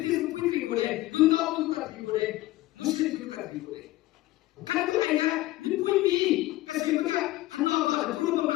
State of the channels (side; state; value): right; quieter; 17.3 dB